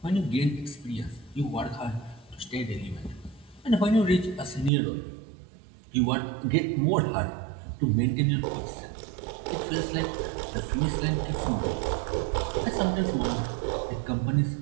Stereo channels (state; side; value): drops out; left; at 4.7 s